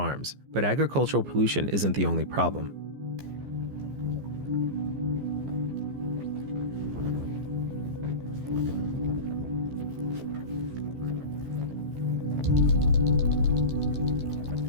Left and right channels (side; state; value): left; late; 15 ms